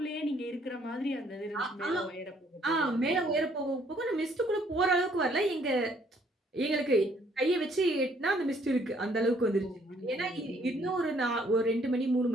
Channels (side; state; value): both; normal; correlation 0.65